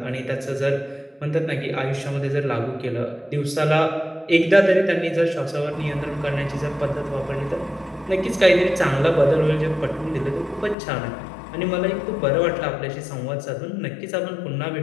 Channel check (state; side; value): drops out; right; at 10.8 s